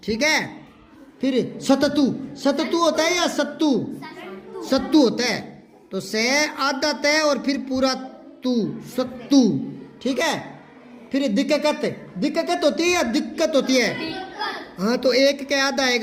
ठीक है। फिर सततु, सततु होता है या सत्तू? सत्तू होता है। तो से आधा तय और फिर पूरा तू, सत्तू, ठीक है। फिर दिक्कत, दिक्कत होती है या दिक्कत होती है? हाँ, तो एक के आधा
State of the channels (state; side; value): identical; both; correlation 1.00